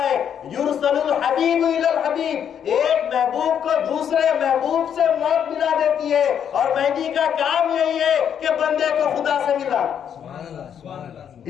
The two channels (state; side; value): quieter; right; 8.6 dB